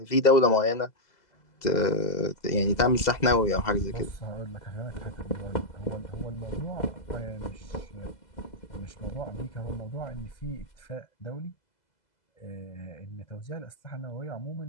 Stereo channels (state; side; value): late; right; 2.0 ms